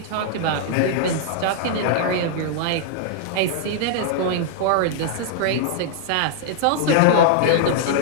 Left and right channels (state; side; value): different; both; correlation -0.01